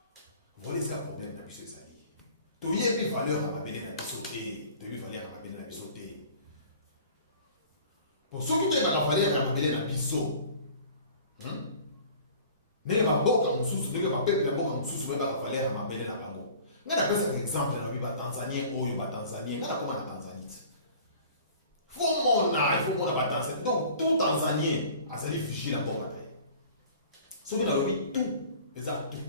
Voilà ça problème na biso ezali. To yebi valeur na belé na biso té, depuis valeur na belé na biso té. Pour ceux qui te ba valeur na belé na biso. Ne ba boka mususu, ne ba peuple na boka mususu ba valeur na belé na bango. Ngana pesa exemple na biba Tanzanie oyo ba Tanzanie, ngana koma na Tanzanie. Il faut mon Tanzanie. Donc, tout Tanzanien a sali figé la bombe. Ce qu'on a dit, tout, exact tout.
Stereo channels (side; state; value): both; inverted; correlation -0.46